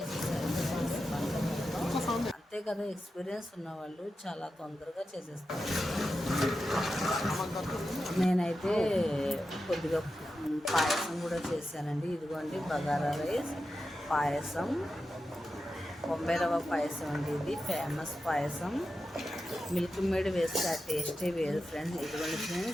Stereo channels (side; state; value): both; normal; correlation 0.91